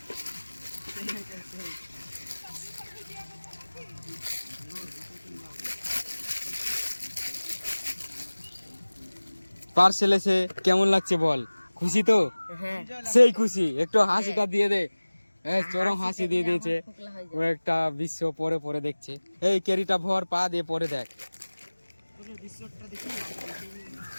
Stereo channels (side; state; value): both; inverted; correlation -1.00